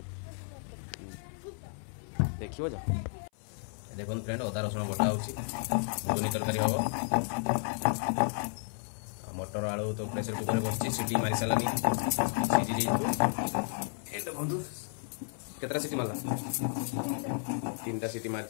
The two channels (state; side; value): silent; right; 56 dB below the other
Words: देखिबो जा देखो फ्रेंड अदा रसुण बटा होची घुगनी तरकारी हबो मटर आलू तो प्रेशर कुकर बसची सीटी मारी सालानी सीजी जेइतो एटा बंधु केतरा सीटी मारला तीनटा सीटी